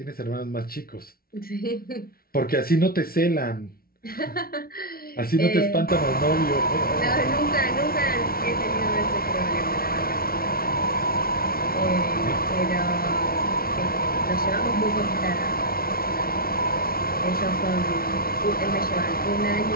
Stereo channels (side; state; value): right; late; 0.43 ms